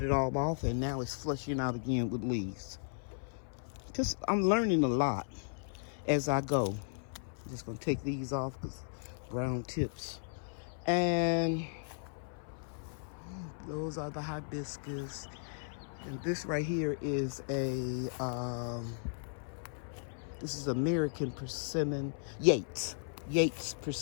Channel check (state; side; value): silent; right; 54 dB below the other